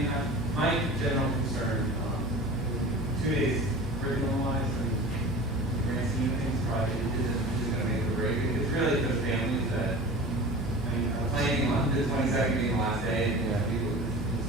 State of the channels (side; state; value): both; normal; correlation 0.37